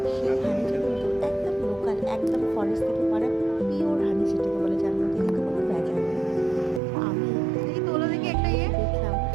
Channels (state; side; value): drops out; left; at 6.8 s